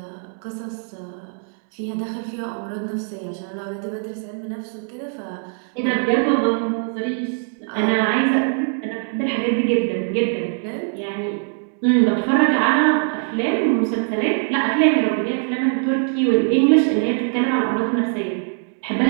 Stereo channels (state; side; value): silent; left; 58 dB below the other